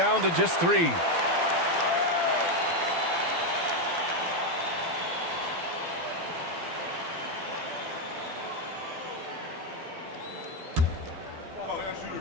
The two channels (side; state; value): left; late; 12 ms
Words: to just 3.